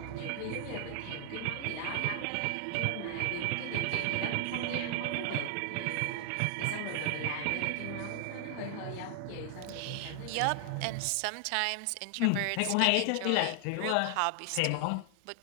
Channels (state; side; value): different; both; correlation 0.00